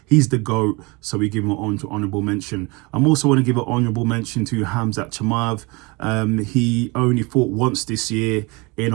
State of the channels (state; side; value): quieter; left; 27.0 dB